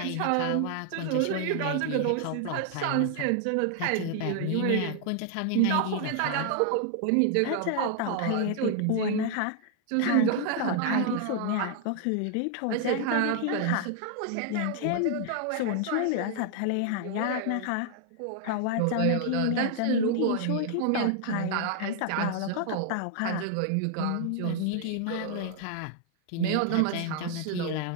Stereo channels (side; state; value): both; different; correlation 0.00